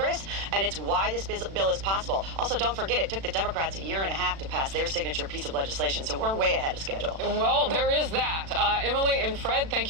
and it's why this bill is possible. Also, don't forget, it took the Democrats a year and a half to pass their signature piece of legislation, so we're way ahead of schedule. Well, there is that. Emily and Fred, thank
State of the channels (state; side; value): late; left; 36 ms